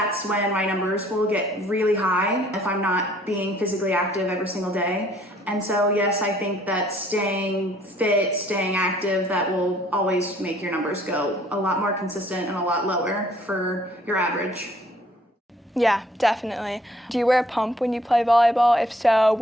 when my numbers will get really high if I'm not being physically active every single day. And so yes, I think that staying fit, staying active, that will always make your numbers go a lot more consistent and a lot lower for your average. Yeah, definitely. Do you wear a pump when you play volleyball? If so,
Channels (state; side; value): normal; both; correlation 0.60